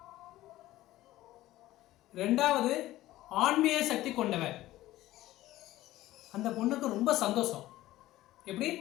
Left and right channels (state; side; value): quieter; right; 15.8 dB